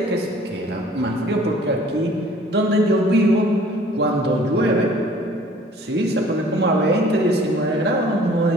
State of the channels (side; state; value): both; normal; correlation 0.53